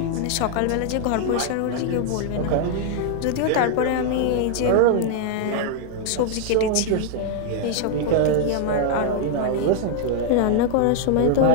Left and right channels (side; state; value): both; different; correlation 0.00